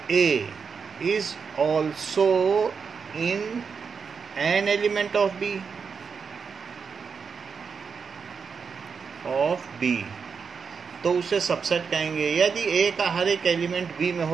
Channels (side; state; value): left; quieter; 5.8 dB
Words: A is also in an element of B. तो उसे सबसेट कहेंगे। यदि A का हर एक एलिमेंट B में